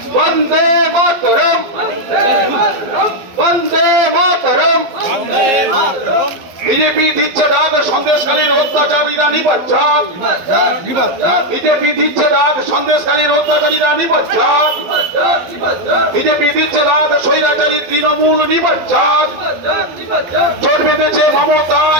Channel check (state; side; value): late; left; 12 ms